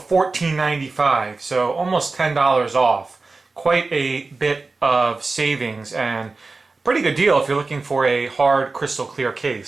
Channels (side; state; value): left; quieter; 3.8 dB